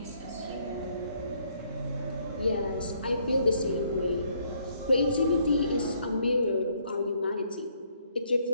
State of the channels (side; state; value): both; inverted; correlation -0.69